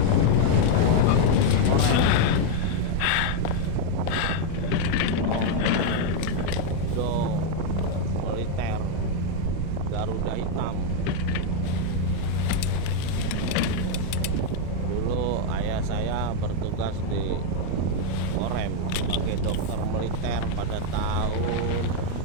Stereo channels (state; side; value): different; both; correlation 0.00